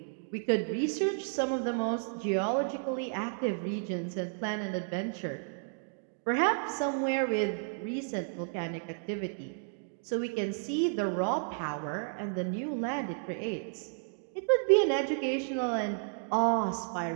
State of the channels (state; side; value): silent; left; digital silence